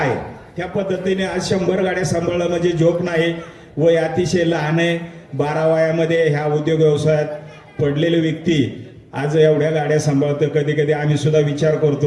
त्या पद्धतीने आज 100 गाड्या सांभाळणं म्हणजे जोक नाही. वय अतिशय लहान आहे. 12 वयामध्ये ह्या उद्योग व्यवसायात पडलेले व्यक्ती आज एवढ्या गाड्या सांभाळतं. कधी कधी आम्ही सुद्धा विचार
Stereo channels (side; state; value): both; identical; correlation 1.00